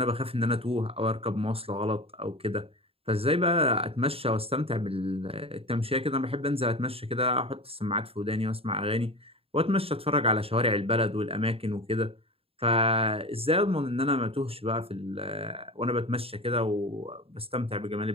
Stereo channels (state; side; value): late; left; 0.28 ms